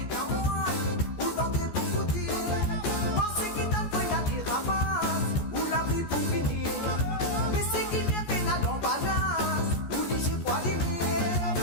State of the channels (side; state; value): right; late; 14 ms